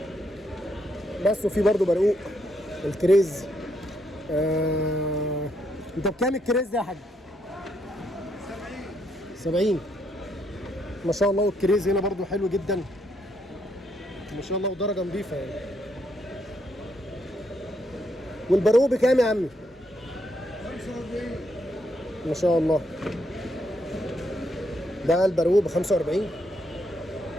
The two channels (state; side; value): normal; both; correlation 0.76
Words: بس وفي برضو برقوق الكريز. انت بكام الكريز ده يا حاج؟ 70 ما شاء الله. والكريز هنا برضو حلو جدا ما شاء الله ودرجه نظيفه يعني. والبرقوق بكام يا عمي؟ 45 ما شاء الله. ده البرقوق ب 45